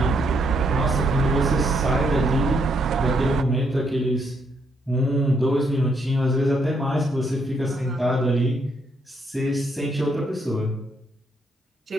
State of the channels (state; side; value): normal; both; correlation 0.74